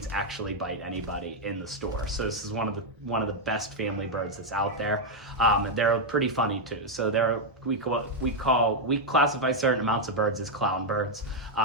actually bite anybody in the store. So this is one of the best family birds that's out there. They're pretty funny too. So we classify certain amounts of birds as clown birds.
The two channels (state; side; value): normal; both; correlation 0.00